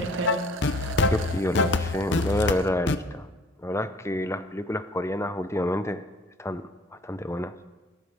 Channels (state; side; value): normal; both; correlation 0.53